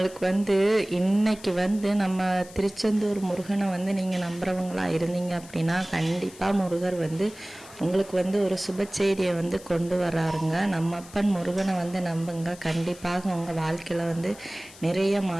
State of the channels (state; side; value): noise; left; hiss, 20 dB below the sound